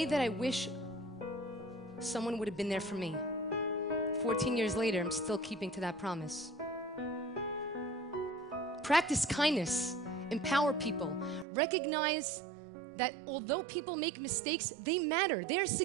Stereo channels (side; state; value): left; drops out; at 11.5 s